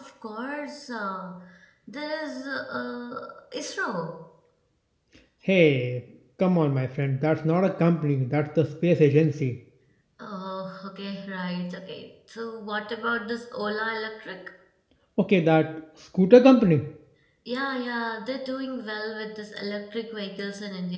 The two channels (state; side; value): identical; both; correlation 1.00